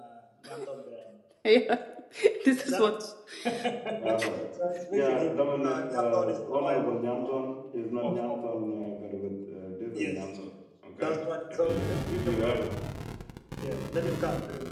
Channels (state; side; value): identical; both; correlation 1.00